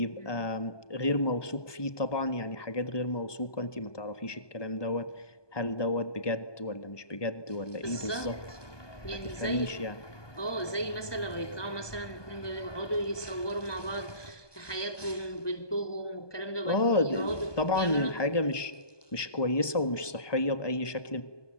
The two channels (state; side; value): late; right; 1.2 ms